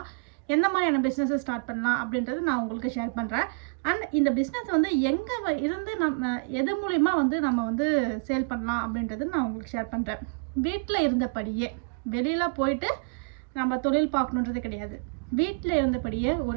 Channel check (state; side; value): quieter; left; 37.9 dB